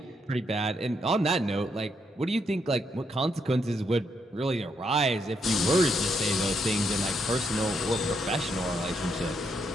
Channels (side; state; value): both; normal; correlation 0.77